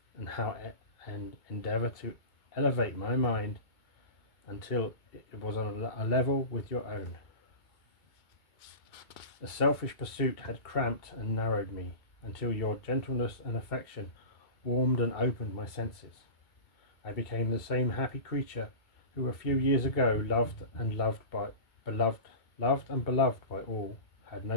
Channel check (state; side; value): late; right; 2.7 ms